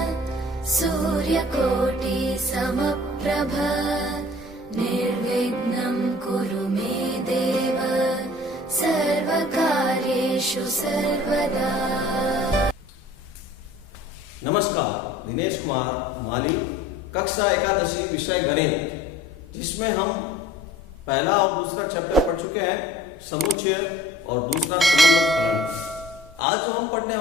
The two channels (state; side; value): normal; both; correlation 0.49